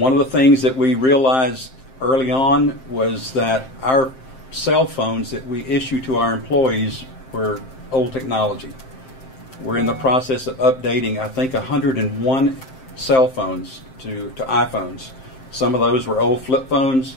of the things that we realized early on was that our cell phones that we issue to our employees were old technology. We're in the process of updating, I think, 101 cell phones to iPhones. Some of those were old flip phones,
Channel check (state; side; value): late; right; 7.6 ms